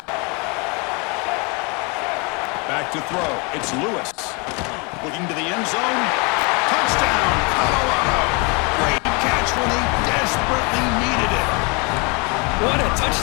Back to throw. It's Lewis. Looking to the end zone. Touchdown, Colorado. Great catch when they desperately needed it. What a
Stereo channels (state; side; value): quieter; right; 31.2 dB